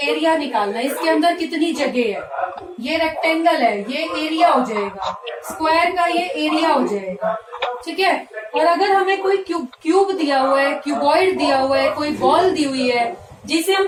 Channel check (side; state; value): both; identical; correlation 1.00